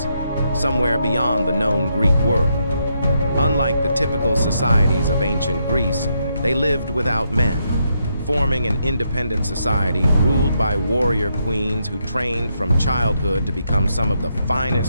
somewhere beyond the known Greek world. Unlike the typical societies of ancient Greece, they lived without men, forming an independent society ruled by warrior queens who trained from childhood to become some of the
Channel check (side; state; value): both; inverted; correlation -0.79